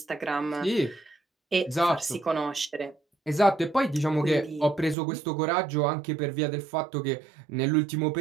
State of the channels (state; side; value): drops out; left; at 5.0 s